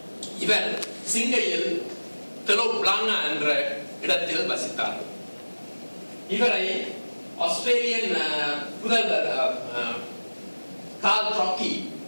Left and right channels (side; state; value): both; inverted; correlation -1.00